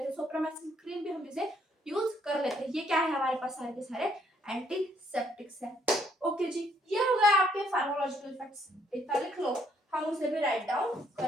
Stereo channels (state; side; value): normal; both; correlation 0.68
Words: हैं, सोप्रामाइसिन क्रीम भी हम इसे यूज कर लेते हैं। ये क्या है हमारे पास सारे के सारे एंटीसेप्टिक्स है। ओके जी, ये हो गया आपके फार्माकोलॉजिकल इफेक्ट्स। इतना लिख लो, हम उसे भी राइट डाउन